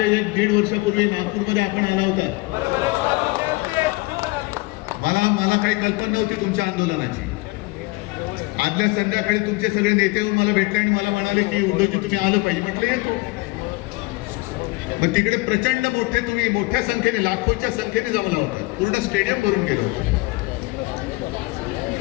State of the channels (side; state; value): right; quieter; 23.7 dB